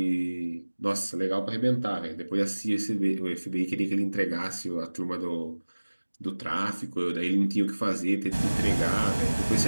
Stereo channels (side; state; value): both; inverted; correlation -1.00